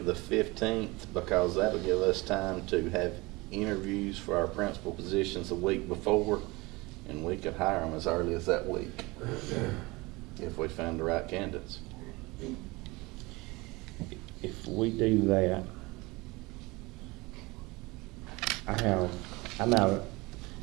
the 15th, because that'll give us time to have interviews for our principal positions the week before, and we could hire them as early as that week if we found the right candidates. If we do that, I'm out.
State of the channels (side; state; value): left; quieter; 23.3 dB